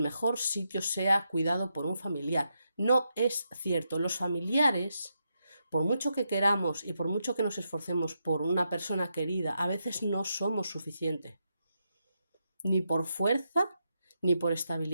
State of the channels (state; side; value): inverted; both; correlation -0.83